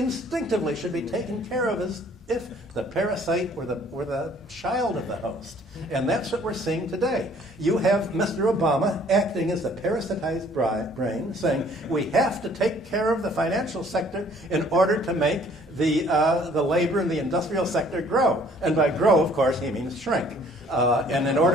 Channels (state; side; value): normal; both; correlation 0.58